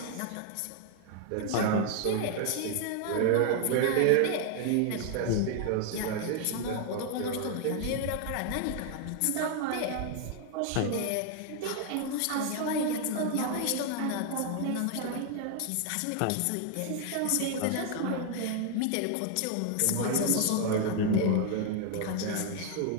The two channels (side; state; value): both; different; correlation 0.00